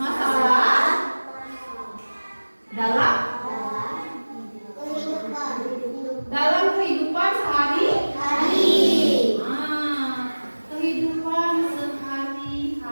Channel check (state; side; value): inverted; both; correlation -1.00